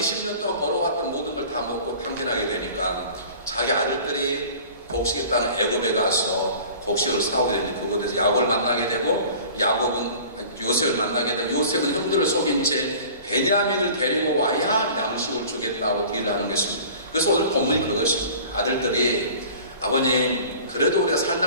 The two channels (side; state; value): both; inverted; correlation -0.44